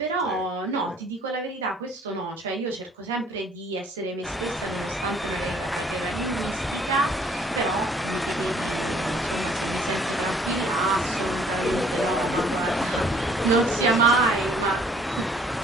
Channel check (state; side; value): normal; both; correlation 0.59